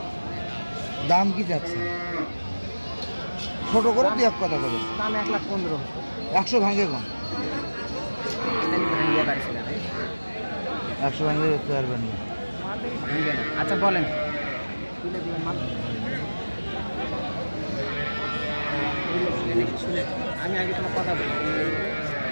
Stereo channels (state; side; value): inverted; both; correlation -1.00